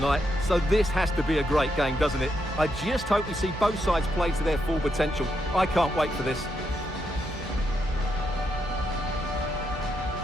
so this has to be a great game, doesn't it? I just hope we see both sides play to their full potential. I can't wait for this.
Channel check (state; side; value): normal; both; correlation 0.81